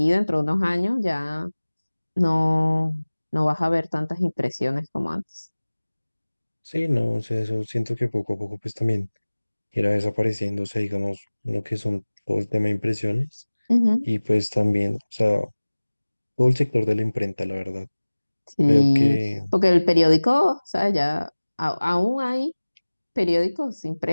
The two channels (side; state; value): both; inverted; correlation -1.00